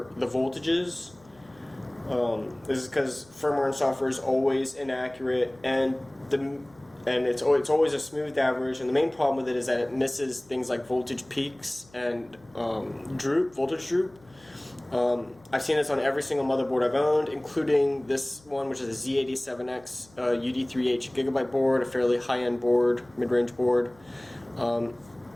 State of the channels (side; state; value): left; noise; hum, 28 dB below the sound